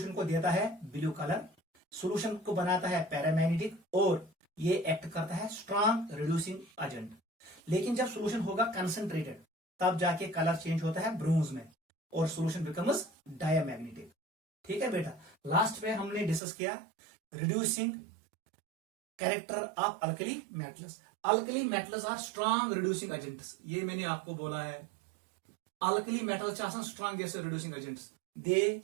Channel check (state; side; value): drops out; left; at 16.4 s